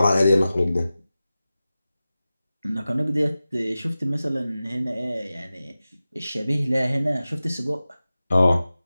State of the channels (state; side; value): inverted; both; correlation -0.95